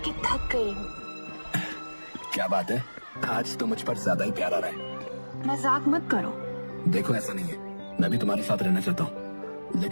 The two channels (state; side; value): inverted; both; correlation -1.00